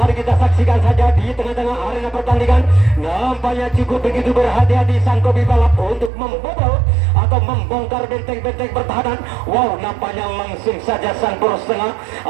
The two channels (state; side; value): drops out; left; at 6.1 s